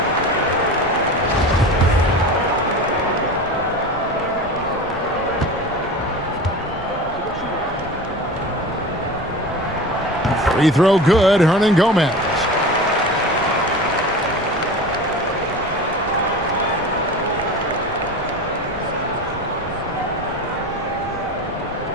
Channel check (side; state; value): both; normal; correlation 0.32